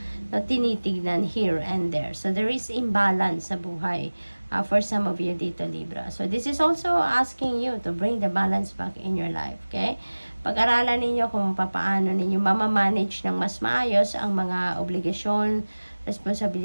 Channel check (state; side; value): inverted; both; correlation -1.00